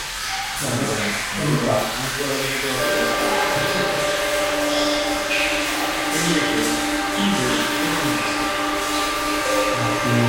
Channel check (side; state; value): both; identical; correlation 1.00